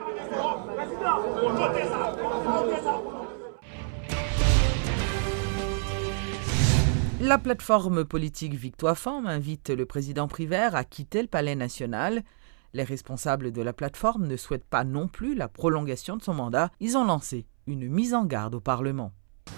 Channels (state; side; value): silent; left; 59 dB below the other